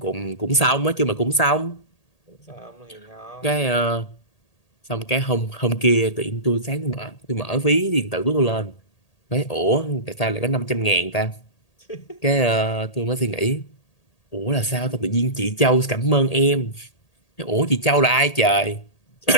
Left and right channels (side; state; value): right; late; 1.8 ms